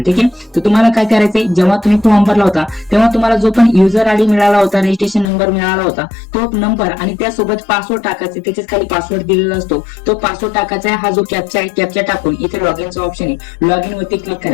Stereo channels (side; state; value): right; drops out; at 5.3 s